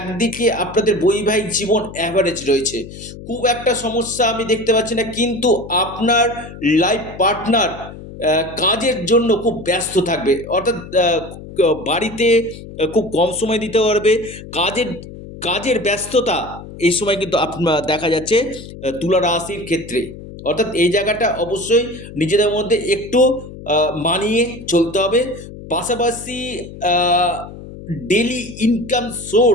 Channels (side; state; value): left; noise; hum, 14 dB below the sound